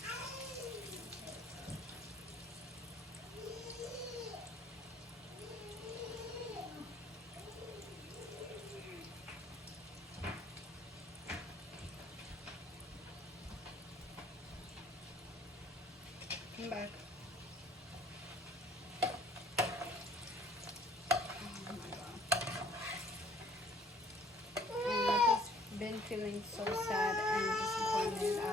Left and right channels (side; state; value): both; normal; correlation 0.58